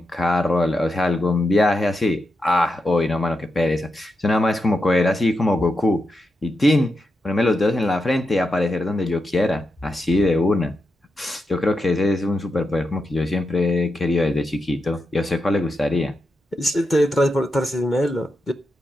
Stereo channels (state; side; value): normal; both; correlation 0.87